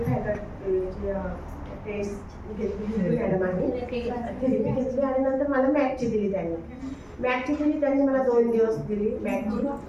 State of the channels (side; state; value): both; identical; correlation 1.00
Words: टेस्ट घेतली मॅडमांनी, थेरपी घेतली आणि नंतर मला मॅटची दिली त्यांनी. त्यांनी मला 2 दिवस दिली मॅटची.